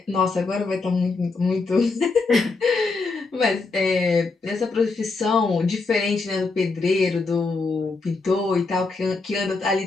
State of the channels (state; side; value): quieter; right; 3.9 dB